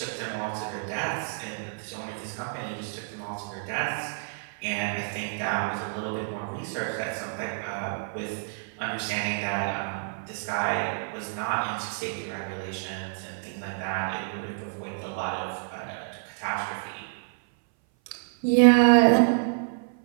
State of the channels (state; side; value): silent; left; 57 dB below the other